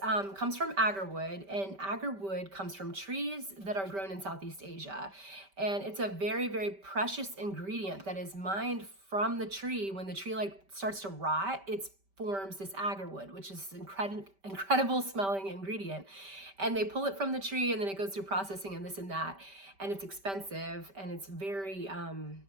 comes from agarwood, and agarwood comes from trees that are grown in Southeast Asia. And it's a very, very precious ingredient that is mined from the tree. When the tree starts to rot, it's forms this agarwood, which is an incredible smelling ingredient. And they pull it from the tree and then it goes through processing and this and that. And it's expensive and it's very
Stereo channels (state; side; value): late; left; 5.1 ms